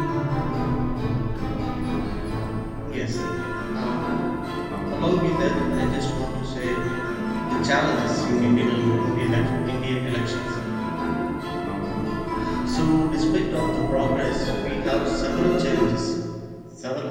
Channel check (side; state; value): both; identical; correlation 1.00